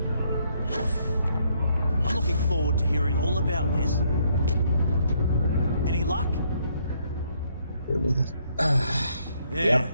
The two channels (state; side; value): inverted; both; correlation -0.70